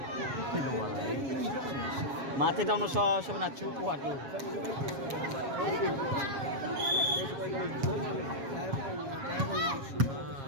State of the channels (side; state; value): left; late; 7.4 ms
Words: Mati daw no sa nachu ko ato.